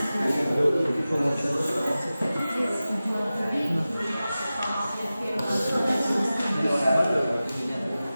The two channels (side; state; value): both; inverted; correlation -0.95